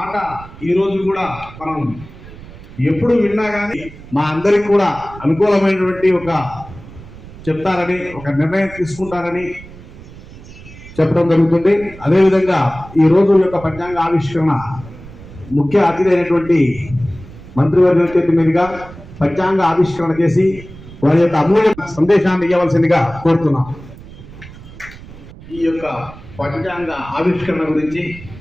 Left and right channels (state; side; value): noise; right; rumble, 17 dB below the sound